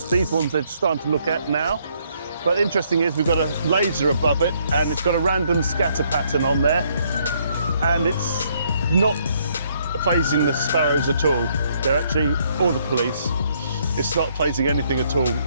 These ones they're starting to look at now. But interesting is we've got a laser above it and it's got a random scatter pattern on there, and it's not phasing the sparrows at all. They're actually, or the police, it's not phasing anything at all.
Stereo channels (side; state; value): both; inverted; correlation -0.69